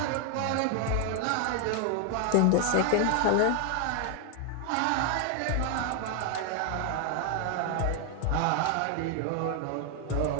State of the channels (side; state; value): both; different; correlation 0.00